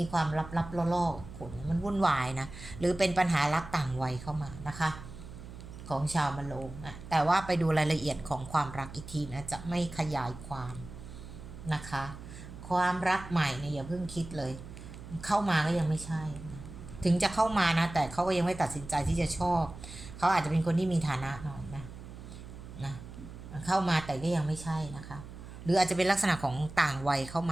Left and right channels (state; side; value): noise; right; hum, 13 dB below the sound